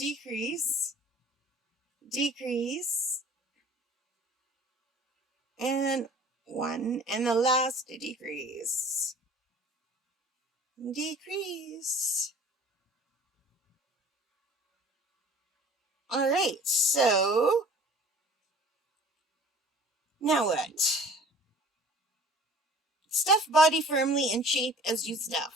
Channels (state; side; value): normal; both; correlation 0.48